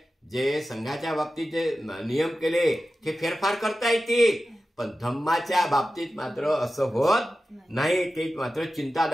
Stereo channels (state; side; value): normal; both; correlation 0.93